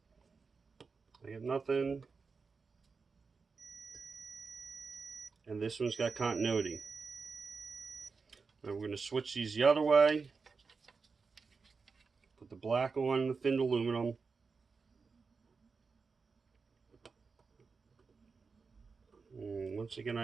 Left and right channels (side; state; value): left; quieter; 4.8 dB